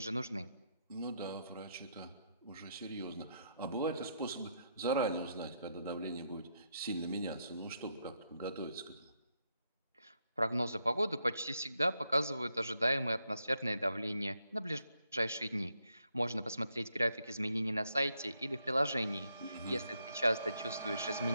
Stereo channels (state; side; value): inverted; both; correlation -0.79